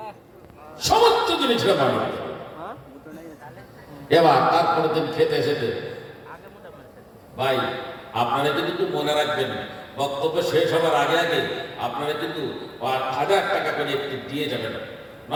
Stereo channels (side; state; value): both; identical; correlation 1.00